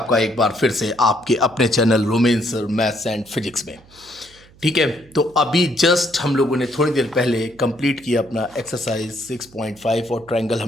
एक बार फिर से आपके अपने channel romance maths and physics में। ठीक है, तो अभी जस्ट हम लोगों ने थोड़ी देर पहले कंप्लीट किया अपना एक्सरसाइज 6.5 और ट्रायंगल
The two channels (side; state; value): right; noise; hum, 26 dB below the sound